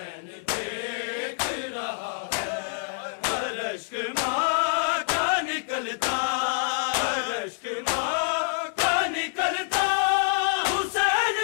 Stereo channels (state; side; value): silent; right; digital silence